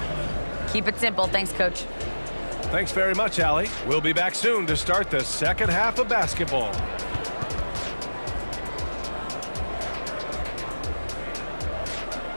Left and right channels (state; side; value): inverted; both; correlation -1.00